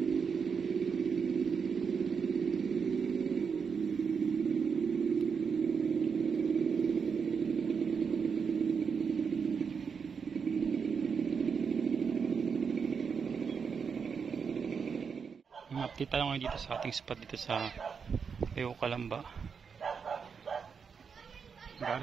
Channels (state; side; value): quieter; left; 6.1 dB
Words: Update tayo ngayon dito sa ating spot dito sa Calamba.